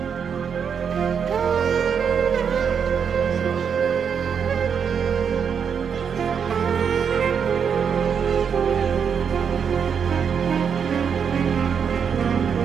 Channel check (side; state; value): left; quieter; 7.1 dB